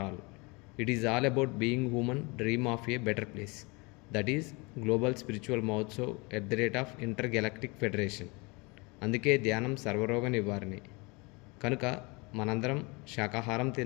all. It is all about being human, dream of a better place. That is Global Spiritual Mahotsav Intergalactic Federation. అందుకే ధ్యానం సర్వరోగ నివారణి. కనుక మనందరం శాకాహారం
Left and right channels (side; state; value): right; quieter; 27.6 dB